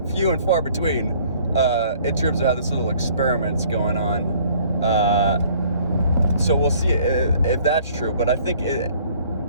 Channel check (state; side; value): inverted; both; correlation -0.57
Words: few and far between in terms of how this little experiment's going on. So we'll see if that's true. But I think